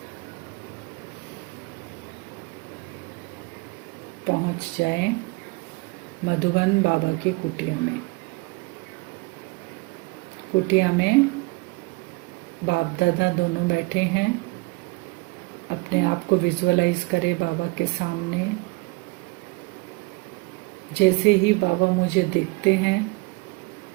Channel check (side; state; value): left; quieter; 25.4 dB